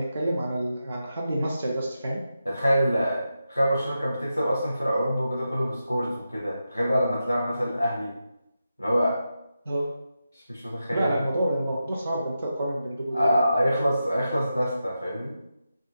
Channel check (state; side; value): inverted; both; correlation -0.89